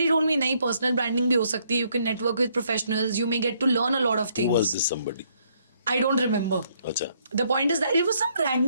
told me नहीं, पर्सनल ब्रांडिंग भी हो सकती है, you can network with professionals, you may get to learn a lot of Who things. was this somebody? I don't remember. अच्छा. The point is that it was some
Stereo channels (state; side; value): inverted; both; correlation -0.70